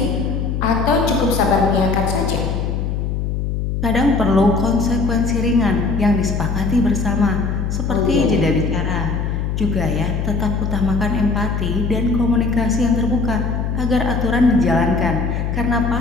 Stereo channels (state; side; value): noise; left; hum, 1 dB below the sound